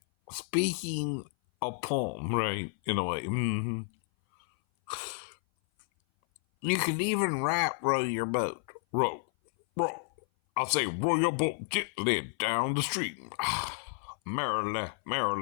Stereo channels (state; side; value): silent; right; 56 dB below the other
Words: speaking a poem, right? In a way. You can even rap row your boat. Row, row. I say row your boat gently down the stream. Merrily,